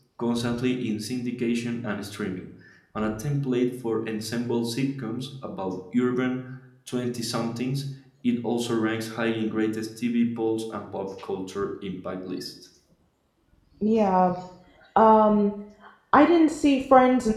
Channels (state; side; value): identical; both; correlation 1.00